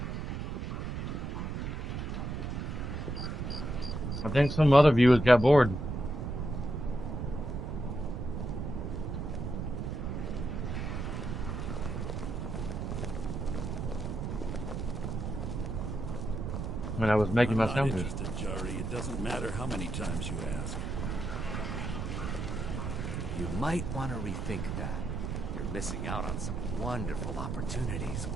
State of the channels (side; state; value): right; noise; rumble, 3 dB below the sound